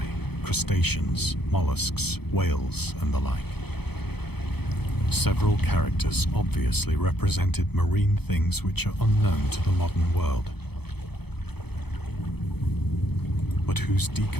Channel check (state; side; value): late; right; 0.97 ms